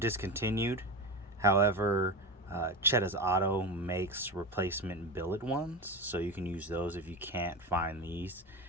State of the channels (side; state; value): both; normal; correlation 0.23